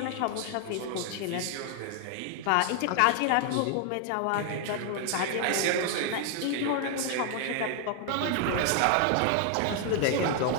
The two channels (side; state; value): both; different; correlation 0.00